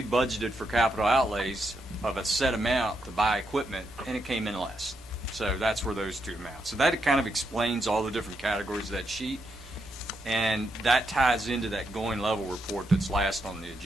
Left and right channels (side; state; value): both; normal; correlation 0.81